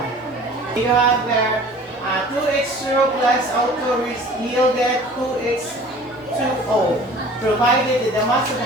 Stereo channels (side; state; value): both; normal; correlation 0.46